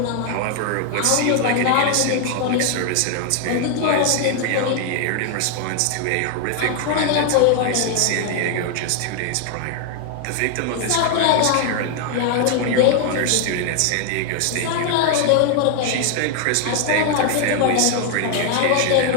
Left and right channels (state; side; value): different; both; correlation 0.00